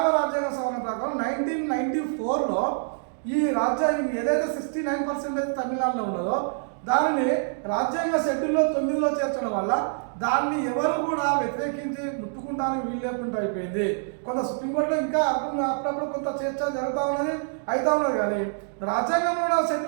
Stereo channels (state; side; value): silent; left; digital silence